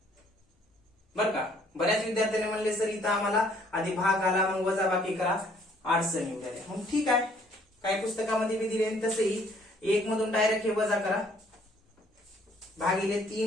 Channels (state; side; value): normal; both; correlation 0.62